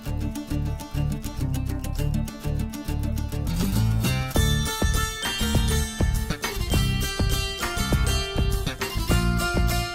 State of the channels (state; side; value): identical; both; correlation 1.00